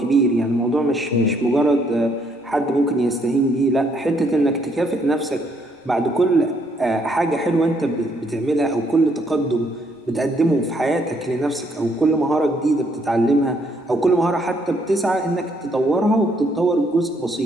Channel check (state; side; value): normal; both; correlation 0.70